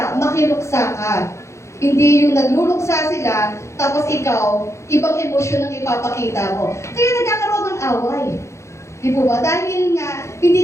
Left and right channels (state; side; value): late; right; 0.14 ms